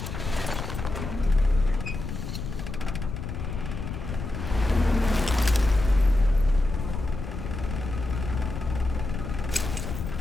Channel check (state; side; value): noise; left; rumble, 6 dB below the sound